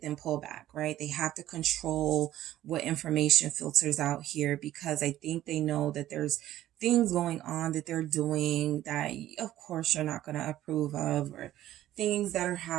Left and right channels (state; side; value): quieter; left; 13.6 dB